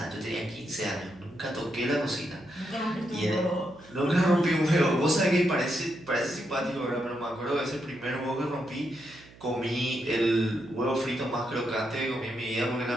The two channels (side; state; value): right; noise; hum, 22 dB below the sound